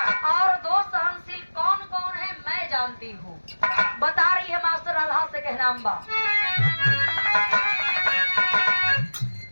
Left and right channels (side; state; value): both; inverted; correlation -1.00